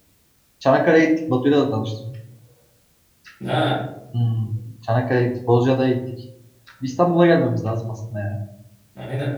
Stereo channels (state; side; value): identical; both; correlation 1.00